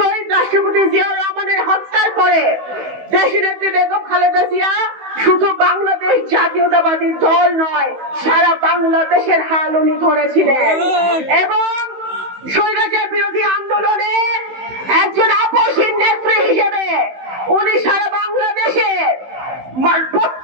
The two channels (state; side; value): late; left; 16 ms